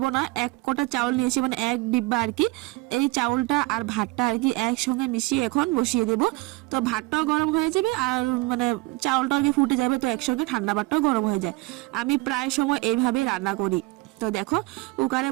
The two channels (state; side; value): quieter; left; 23.2 dB